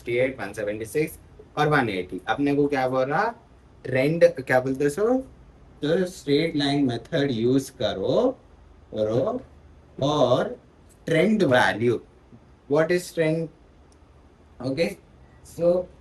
176 और 180। अपने को क्या बोल रहा, ट्रेंड क्या बोलते सो, तो स्ट्रेट लाइन मेथड यूज करो करो और trend value, what is trend, okay. So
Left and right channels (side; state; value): both; identical; correlation 1.00